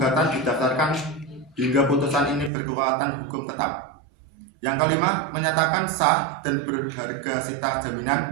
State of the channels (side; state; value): left; drops out; at 2.5 s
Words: didaftarkan hingga putusan ini berkekuatan hukum tetap. Yang kelima, menyatakan sah dan berharga sita